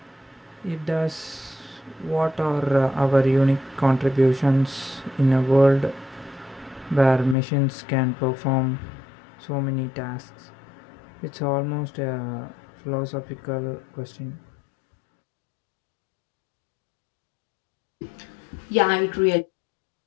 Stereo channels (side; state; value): right; drops out; at 7.4 s